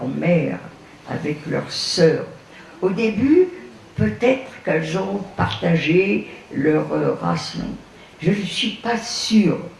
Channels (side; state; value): both; identical; correlation 1.00